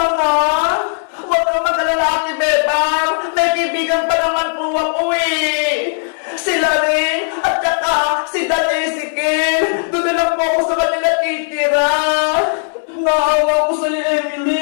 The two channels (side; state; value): right; silent; 62 dB below the other